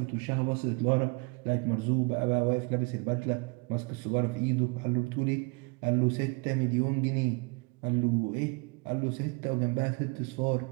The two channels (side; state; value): left; quieter; 30.3 dB